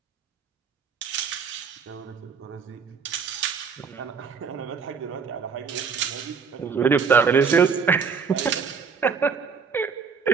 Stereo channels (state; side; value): quieter; left; 5.8 dB